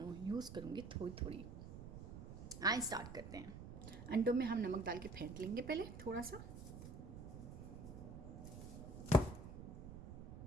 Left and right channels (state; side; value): noise; right; rumble, 10 dB below the sound